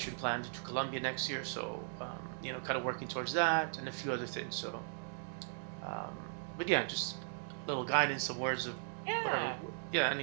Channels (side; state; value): left; silent; digital silence